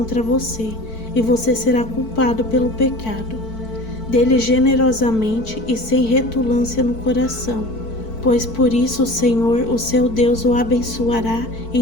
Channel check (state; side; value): late; right; 4.5 ms